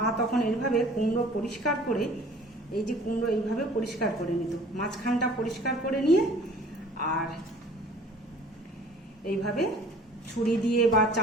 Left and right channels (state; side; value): normal; both; correlation 0.49